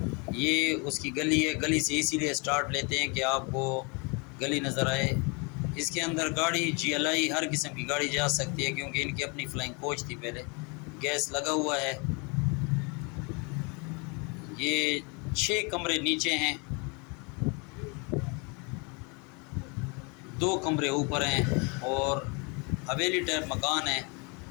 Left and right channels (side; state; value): right; quieter; 32.1 dB